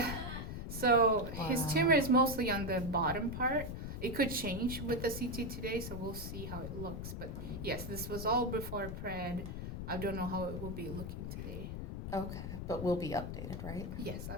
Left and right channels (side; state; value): left; noise; rumble, 5 dB below the sound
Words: So his Wow. tumor is mostly on the bottom part. It could change with the CT today, so we'll see how it looks. But yes, this was all before pred. I don't know how it will be looking today. Okay, but we'll be updated, right? Yes,